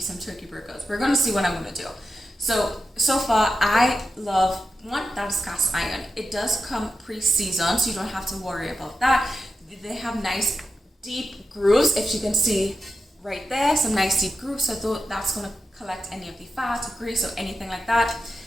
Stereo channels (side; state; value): both; normal; correlation 0.90